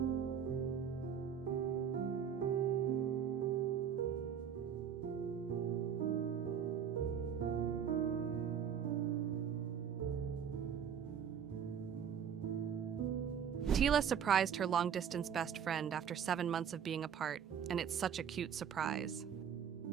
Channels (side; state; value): left; quieter; 8.0 dB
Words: Tila surprised her long-distance best friend after 7 months of being apart, and it's such a cute surprise.